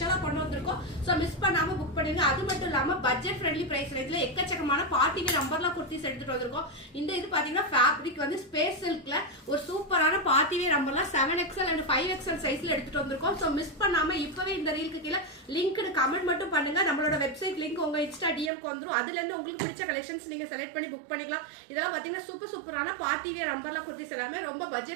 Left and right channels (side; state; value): left; drops out; at 18.5 s